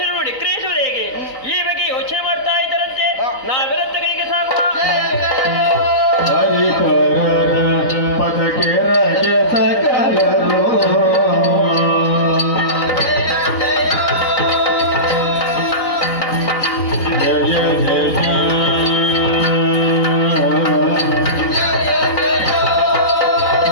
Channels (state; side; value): late; right; 3.9 ms